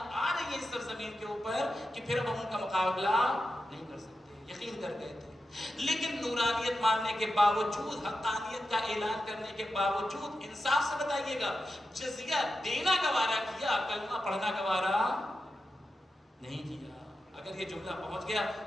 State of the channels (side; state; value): both; normal; correlation 0.90